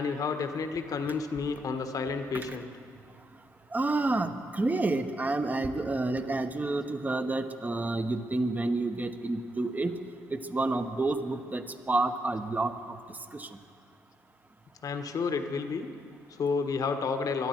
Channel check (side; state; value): both; normal; correlation 0.79